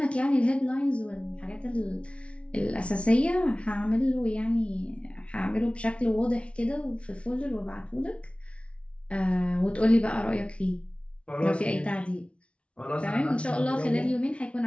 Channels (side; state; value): right; late; 0.061 ms